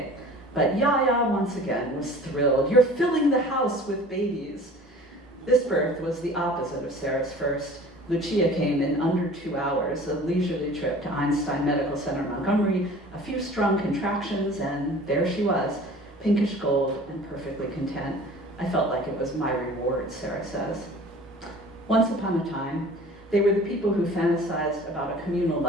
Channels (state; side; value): normal; both; correlation 0.45